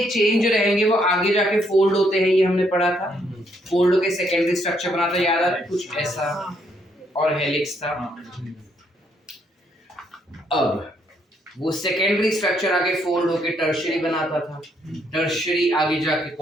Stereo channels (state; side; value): normal; both; correlation 0.72